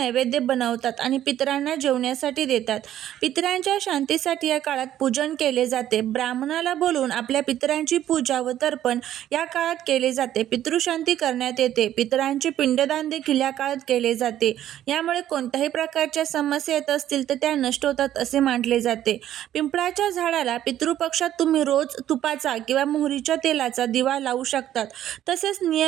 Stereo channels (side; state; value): left; quieter; 12.0 dB